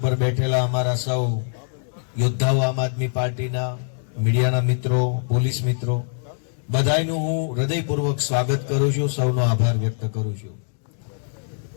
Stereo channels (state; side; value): silent; right; digital silence